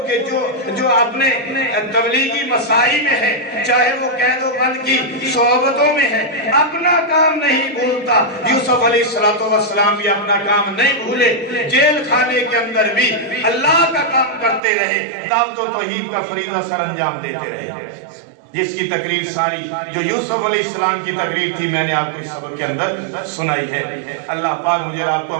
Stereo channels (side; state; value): left; drops out; at 14.6 s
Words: جو اپنے تبلیغی مساعی میں ہے، چاہے وہ قید و بند کی صحبتوں میں ہے، اپنا کام نہیں بھولتا۔ یوسف علیہ السلام بھی اپنا کام نہیں بھولے، جیل خانے کے اندر بھی اللہ کا کام کرتے رہے، دعوت و توحید کا فریضہ سر انجام دیتے رہے، جس کی تقریر ساری جو یوسف علیہ السلام کی تقریر تھی میں نے آپ کو اس سبق کے اندر سنائی ہے۔ اللہ پاک مجھے آپ کو